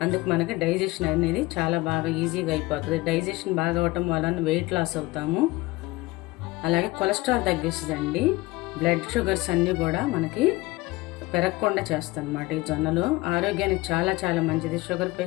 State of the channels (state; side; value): quieter; right; 21.0 dB